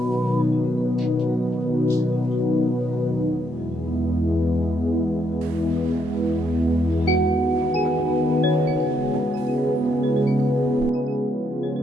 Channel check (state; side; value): normal; both; correlation 0.76